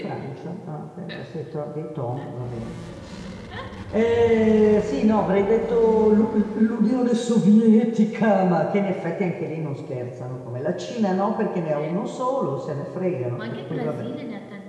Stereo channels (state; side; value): identical; both; correlation 1.00